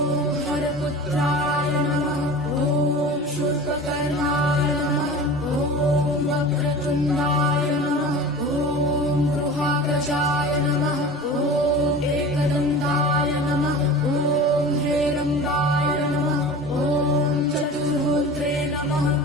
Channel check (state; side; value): normal; both; correlation 0.36